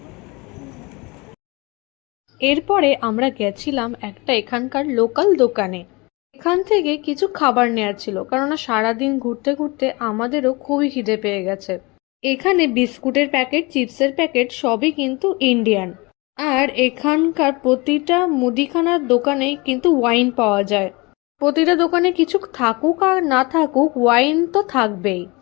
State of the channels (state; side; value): quieter; right; 25.8 dB